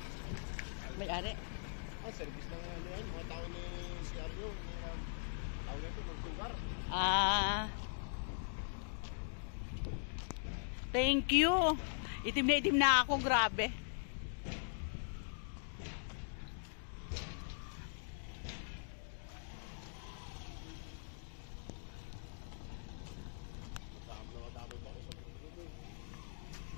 May-ari? Service na nga ano yan, mga tao ni CRU. Tao na ito, magsugar. Thank you. Itim na ako, grabe.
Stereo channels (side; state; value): right; silent; digital silence